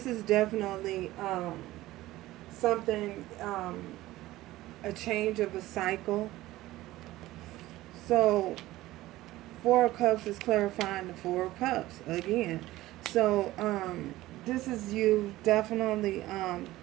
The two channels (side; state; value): left; quieter; 16.9 dB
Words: is definitely something, a change of a cycle. So Four Cups is clarifying the Four Cups again. So this is you definitely